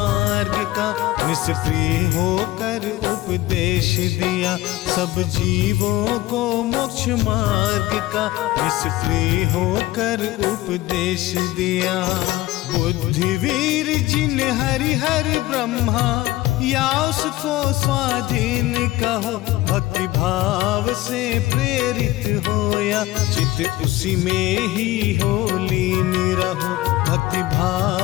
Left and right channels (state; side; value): quieter; right; 17.2 dB